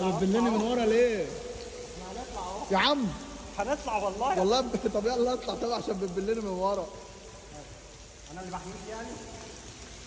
بتبلني من ورا ليه؟ احنا هنطلع اهو. يا عم هنطلع والله. والله طب يلا اطلع طبعا عشان بتبلني من ورا. انا اللي بحميك يعني.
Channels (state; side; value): identical; both; correlation 1.00